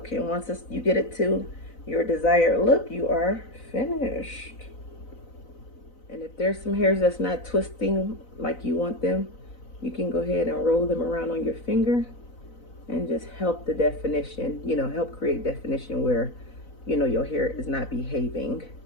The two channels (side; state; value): right; late; 4.0 ms